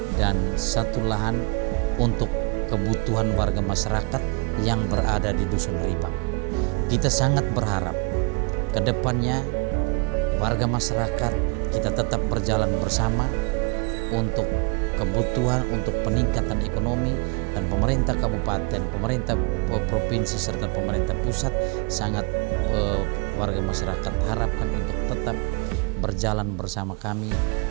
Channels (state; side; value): quieter; left; 32.9 dB